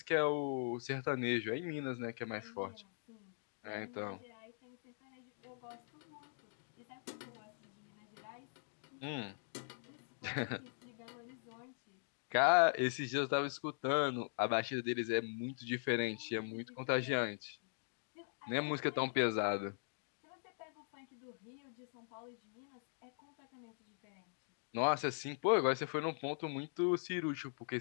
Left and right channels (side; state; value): right; silent; digital silence